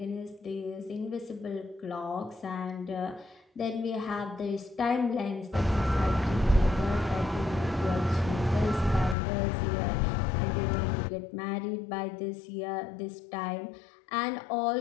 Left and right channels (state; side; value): drops out; right; at 9.2 s